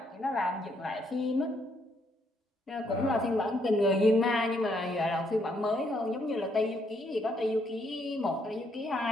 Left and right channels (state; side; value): normal; both; correlation 0.73